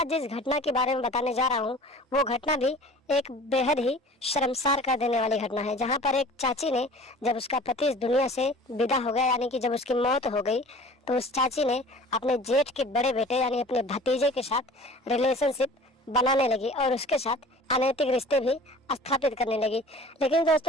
जिस घटना के बारे में बताने जा रहा हूँ, वो घटना भी एक बेहद ही शर्मसार कर देने वाली घटना है। जहाँ पर एक चाची ने, जब उसका पति इस दुनिया से विदा हो गया, यानी कि जब उसकी मौत हो गई, तो उस चाची ने अपने जेठ के बड़े बेटे यानी अपने भतीजे के साथ रिलेशनशिप बनाने लगी और उसके साथ अनैतिक रिश्ते भी स्थापित करने लगी। लेकिन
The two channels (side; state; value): both; normal; correlation 0.44